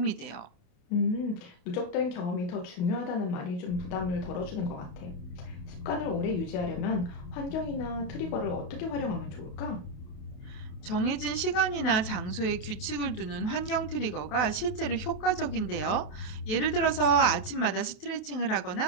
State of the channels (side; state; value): right; late; 28 ms